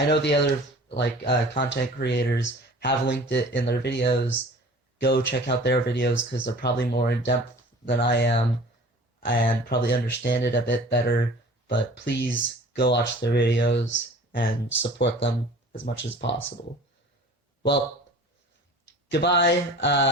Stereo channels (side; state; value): both; normal; correlation 0.45